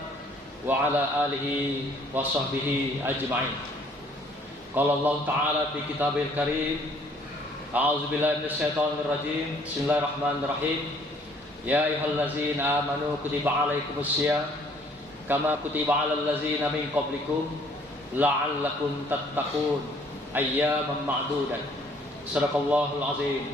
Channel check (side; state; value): both; normal; correlation 0.60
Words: wa ala alihi wa sahbihi ajma'in. Qala Allah Ta'ala fi kitabil karim, a'udzu billahi minasyaitonir rajim. Bismillahirrahmanirrahim. Ya ayyuhallazina amanu kutiba alaikumusiyam kama kutiba alal ladzina min qablikum la'allakum tattaqun ayyaman ma'dudat. Shadaqallahul